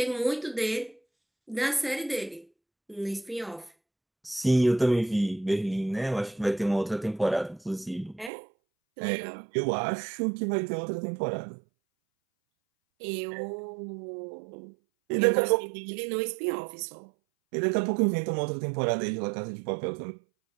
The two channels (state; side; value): drops out; left; at 8.3 s